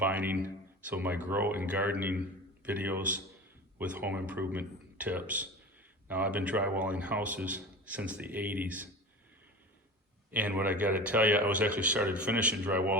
some of my grow and gardening videos with home improvement tips. Now, I've been drywalling houses since the 80s. And what I got to tell you, I was actually started finishing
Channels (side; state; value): both; normal; correlation 0.33